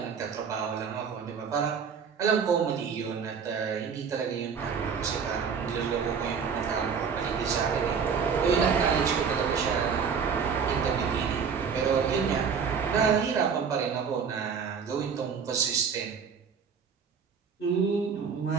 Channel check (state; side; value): quieter; left; 6.4 dB